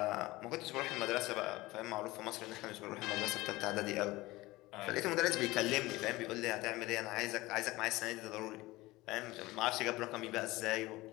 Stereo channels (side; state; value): right; quieter; 19.7 dB